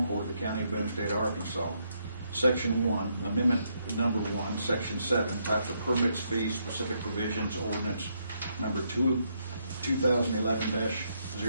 Court of the County of Boone, State of Arkansas, Section 1, Amendment Number 1, Section 7, types of permits, fees, specific provisions, ordinance number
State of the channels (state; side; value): inverted; both; correlation -0.76